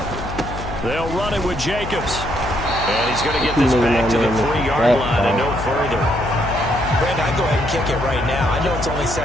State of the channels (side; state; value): left; noise; hum, 8 dB below the sound